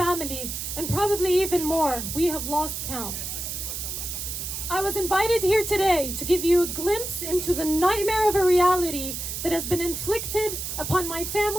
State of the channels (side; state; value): right; noise; hiss, 5 dB below the sound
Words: and probably even more. We have lost count. I was invited here today to give you a glimpse into the nightmare of a reality that has been inflicted upon my